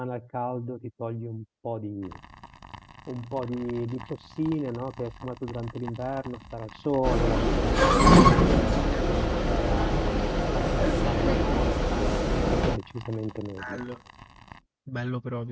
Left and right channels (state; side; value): identical; both; correlation 1.00